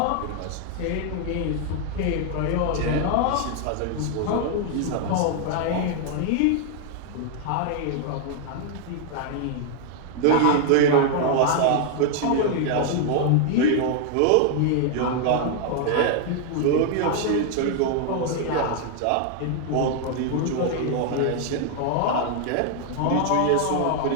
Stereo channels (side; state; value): both; different; correlation 0.00